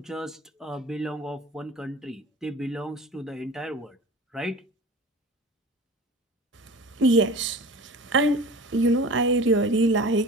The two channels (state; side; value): normal; both; correlation 0.38